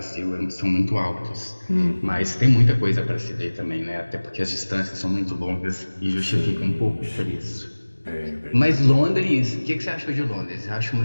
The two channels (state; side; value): inverted; both; correlation -1.00